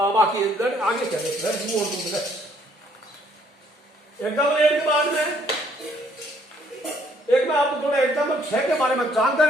आगे चले, एग्जाम्पल 8 के बाद में एक मैं आपको थोड़ा एग्जाम्पल 6 के बारे में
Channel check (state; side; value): normal; both; correlation 0.65